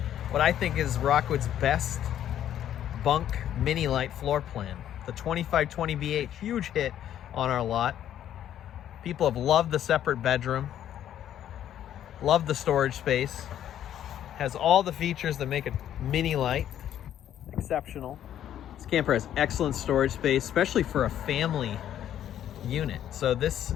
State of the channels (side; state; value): right; quieter; 10.9 dB